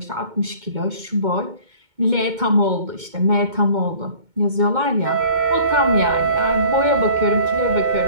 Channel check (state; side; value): late; left; 2.2 ms